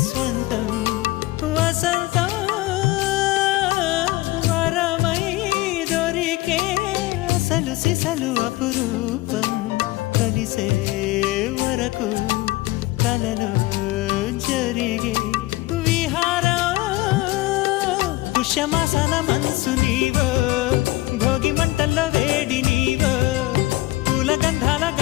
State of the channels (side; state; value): right; quieter; 19.0 dB